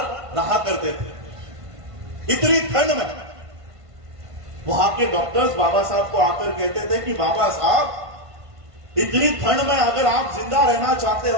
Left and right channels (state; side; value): late; left; 1.5 ms